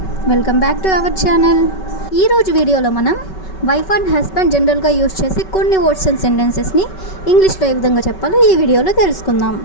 welcome back to our channel. ఈరోజు వీడియోలో మనం వైఫ్ అండ్ హస్బెండ్ జనరల్గా యూజ్ చేసే కొన్ని వర్డ్స్ అండ్ సెంటెన్సెస్ని ఇంగ్లీష్లో ఏ విధంగా చెప్పాలో ఈ వీడియోలో తెలుసుకుందాం.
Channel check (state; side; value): late; right; 5.3 ms